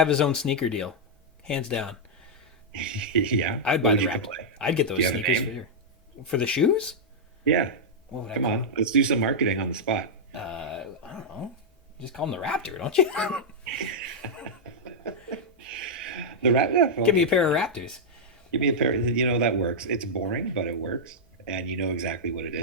his own sneaker deal, hands down. Yeah. I'd What buy would the you Raptor. play? I'd get Do those you have a sneakers for name? sure. For the shoes? Yeah. What would I Come call on. Let's do some marketing on the spot. I don't know. You just call them the Raptor, don't you? The rat. Yeah, Give me okay. a pair of Raptors. Give me a pair. That works. It's boring, but it works, and you know exactly what it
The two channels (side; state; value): both; normal; correlation -0.06